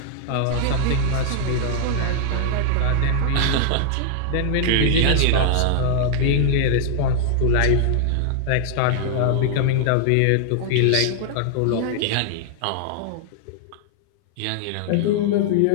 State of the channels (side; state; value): both; different; correlation 0.00